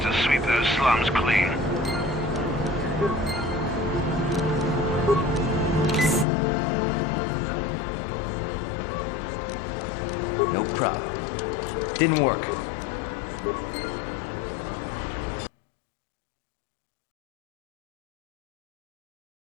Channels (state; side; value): drops out; right; at 6.2 s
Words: to sweep those slums clean. No problem. Didn't work.